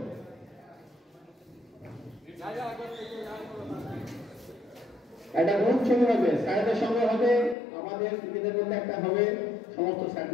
একটা গ্রুপ ছবি হবে, স্যারদের সঙ্গে হবে, আমাদের নিজেদের মধ্যে একটা হবে, সমস্ত স্যার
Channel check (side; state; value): right; drops out; at 7.6 s